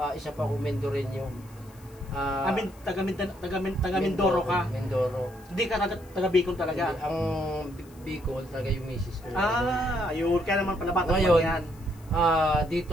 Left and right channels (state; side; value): noise; left; hiss, 26 dB below the sound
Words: isa pa akong Mendoreño. Taga Mindoro ka? Mindoro. Hindi ka taga Bicol talaga? Hindi, ang Bicol talaga yung misis ko. Ayun, kaya naman pala Batang ngayon, Mangyan.